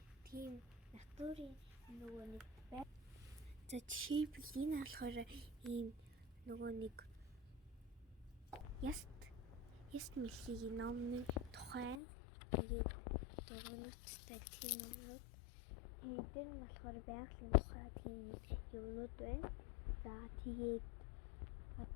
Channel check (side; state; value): right; drops out; at 12.0 s